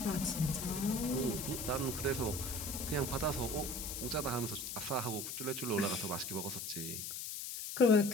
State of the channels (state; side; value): noise; left; hiss, 5 dB below the sound